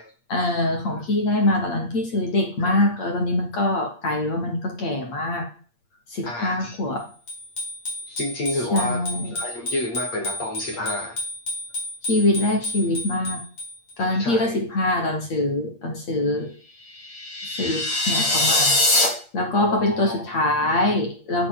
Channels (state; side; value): late; right; 8.6 ms